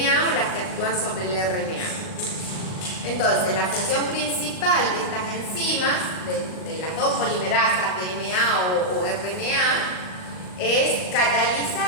o las que actúan sobre el RNA. Entonces, la función principal de estas enzimas, de las dos polimerasas, DNA o RNA, es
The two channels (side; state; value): right; late; 38 ms